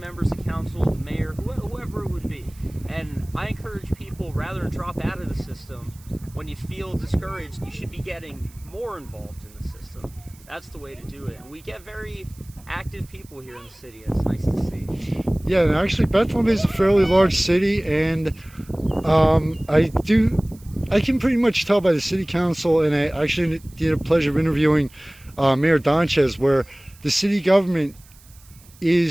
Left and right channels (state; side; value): noise; right; hiss, 25 dB below the sound